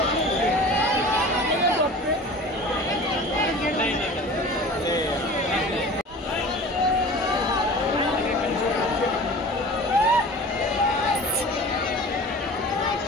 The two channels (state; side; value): normal; both; correlation 0.39